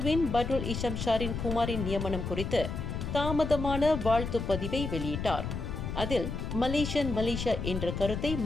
பட்ருல் இஷம் ஷாரின் குமாரின் நியமனம் குறித்து தாமதமான வாழ்த்து பதிவை வெளியிட்டார். அதில் மலேசியா என்ற கருத்தை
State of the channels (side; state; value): left; noise; rumble, 4 dB below the sound